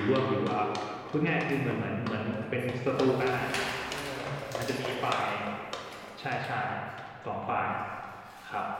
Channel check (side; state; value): both; identical; correlation 1.00